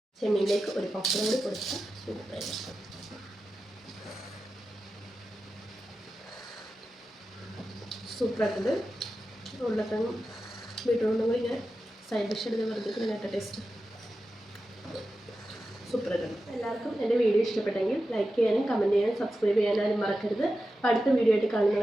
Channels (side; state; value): both; normal; correlation 0.92